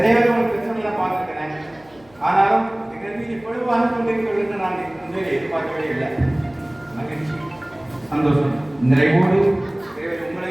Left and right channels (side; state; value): left; noise; hum, 29 dB below the sound